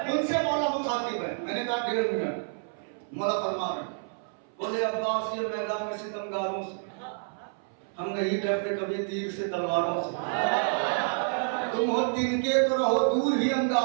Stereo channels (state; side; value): silent; left; 59 dB below the other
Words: उनसे मौला मुखातिब है। मैंने कहा 1.5 मिनट। मौला फरमा रहे बोले अब्बास ये मैदान में सितमगारों से हम नहीं डरते कभी तीर से तलवारों से। तुम हो तिनके तो रहो दूर ही